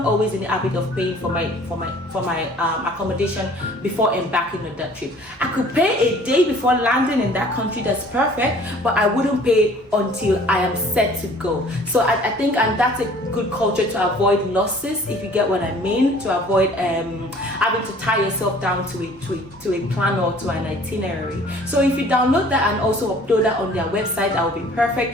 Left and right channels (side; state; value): both; normal; correlation 0.52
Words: always in the habit of paying for my accommodation before embarking on that trip. I could pay a day before landing in that country. That's perfect, but I wouldn't pay until I am set to go. So I think, and that's a good culture to avoid losses, if you get what I mean, to avoid having to tie yourself down to a plan or to an itinerary. So if you download that and also upload that on their website, that would be